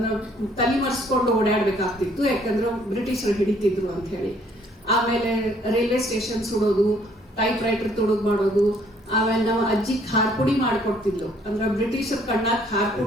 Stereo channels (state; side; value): normal; both; correlation 0.63